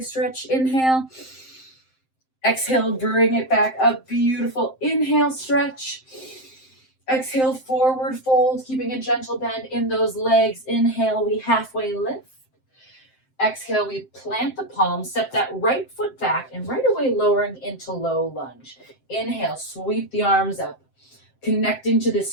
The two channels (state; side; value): late; right; 7.7 ms